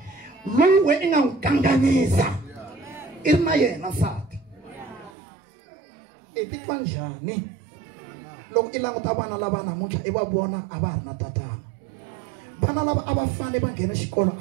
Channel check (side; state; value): left; drops out; at 5.1 s